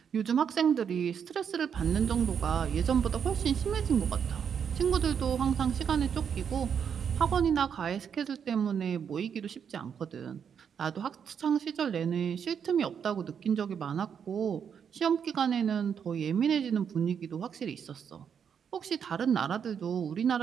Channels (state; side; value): quieter; left; 7.5 dB